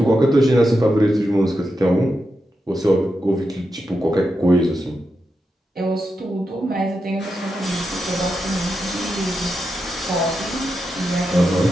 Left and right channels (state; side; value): normal; both; correlation 0.87